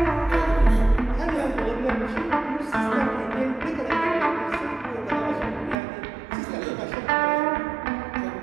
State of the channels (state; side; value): drops out; left; at 5.8 s